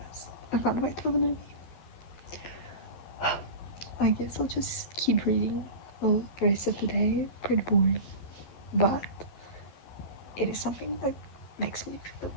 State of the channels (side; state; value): right; late; 11 ms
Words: I can't wait for the movie. I guess I'll just keep reading all the rest of the day. Pretty boring, but it is something that makes me feel